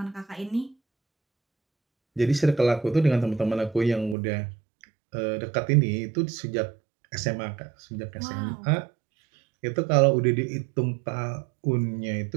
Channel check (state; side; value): drops out; left; at 4.2 s